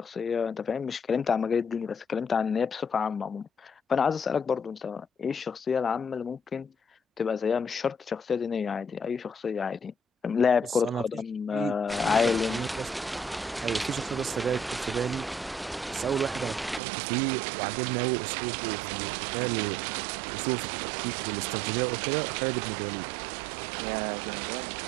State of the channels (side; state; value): left; drops out; at 16.8 s